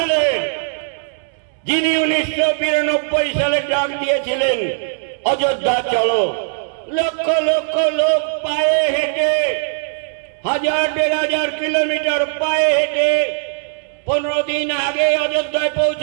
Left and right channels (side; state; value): left; silent; 67 dB below the other